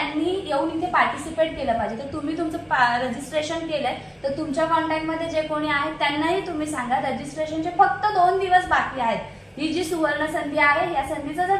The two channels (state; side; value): identical; both; correlation 1.00